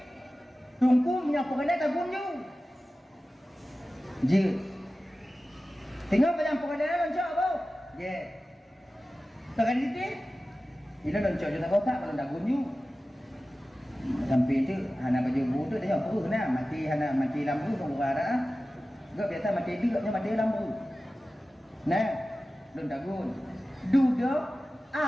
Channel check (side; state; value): both; normal; correlation 0.95